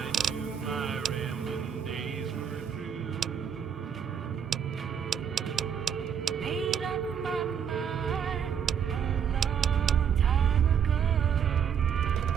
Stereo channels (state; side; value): quieter; left; 7.8 dB